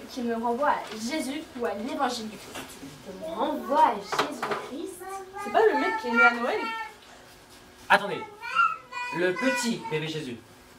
qui me renvoient à Jésus ou à l'évangile du Christ. Qui me renvoient à Jésus-Christ. C'est pas le mec qui est né à Noël? Attendez. Le petit bébé Jésus.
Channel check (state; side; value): identical; both; correlation 1.00